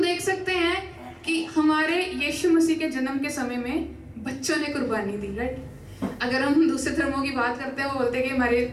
देख सकते हैं कि हमारे यीशु मसीह के जन्म के समय में बच्चों ने कुर्बानी दी, राइट। अगर हम दूसरे धर्मों की बात करते हैं, वो बोलते हैं कि हमारे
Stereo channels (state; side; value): identical; both; correlation 1.00